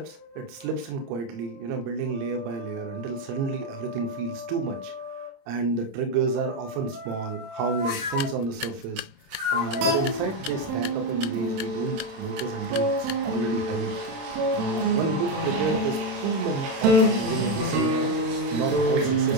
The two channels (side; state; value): left; late; 27 ms